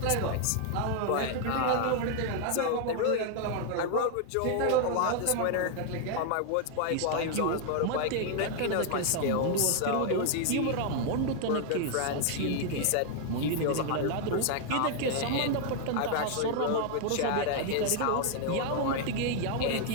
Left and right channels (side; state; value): both; different; correlation 0.00